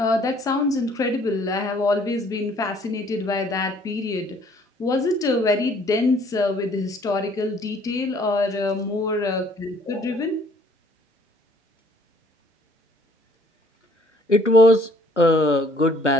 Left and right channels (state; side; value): normal; both; correlation 0.60